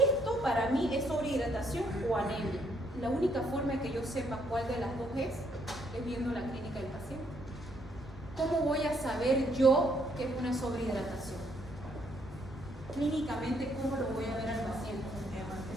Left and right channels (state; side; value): normal; both; correlation 0.71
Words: para mí es sobrehidratación o anemia. La única forma de que yo sepa cuál de las dos es viendo la clínica del paciente. ¿Cómo voy a saber yo que es una sobrehidratación? Clínicamente, ¿cómo lo voy a ver al paciente?